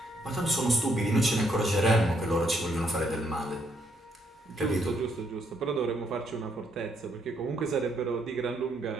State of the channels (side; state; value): both; normal; correlation 0.72